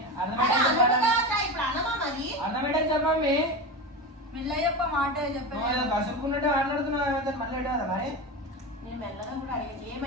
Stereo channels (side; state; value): both; normal; correlation 0.22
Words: ఇప్పుడు అన్నమా మరి అర్థమేటా చెప్పమ్మీ? మెల్లయ్యప్ప మాట నువ్వు ఏదో కసురుకున్నట్టే మాట్లాడుతున్నావు, మళ్ళీ ఏడవదా మరి? నేను మెల్లగా కూడా అడిగాను